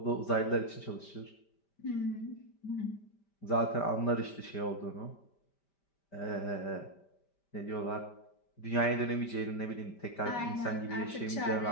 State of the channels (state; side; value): late; right; 5.1 ms